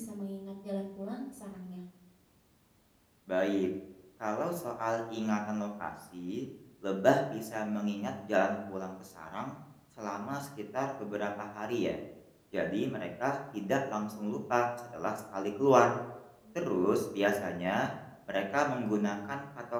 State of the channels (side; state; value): both; identical; correlation 1.00